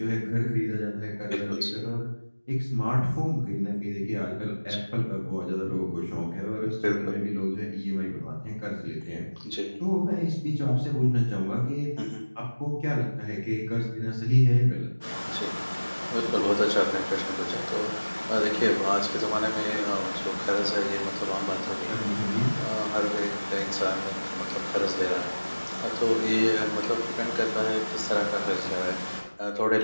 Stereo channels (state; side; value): inverted; both; correlation -1.00